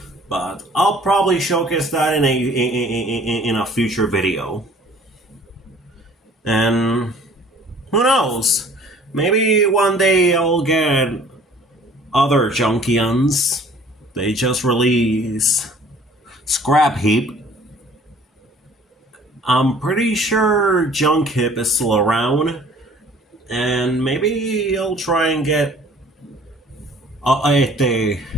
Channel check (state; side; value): normal; both; correlation 0.52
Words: But I'll probably showcase that in a future video. And who knows? Maybe one day I'll get other Junkions. They just released Scrap Heap. I'm pretty sure Junk Hip is still around, and maybe I'll try and get a